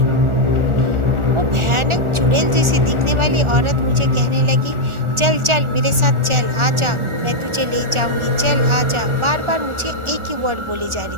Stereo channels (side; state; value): left; late; 1.4 ms